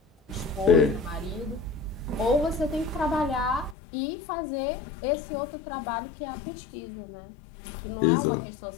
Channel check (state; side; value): drops out; right; at 3.8 s